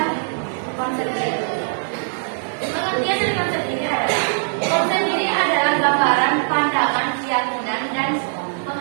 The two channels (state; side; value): silent; left; 65 dB below the other